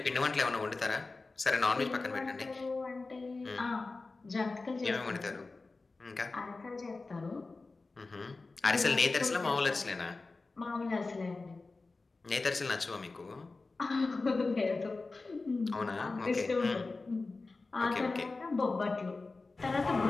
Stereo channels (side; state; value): right; quieter; 3.7 dB